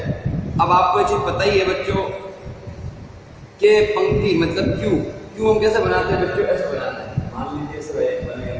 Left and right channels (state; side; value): identical; both; correlation 1.00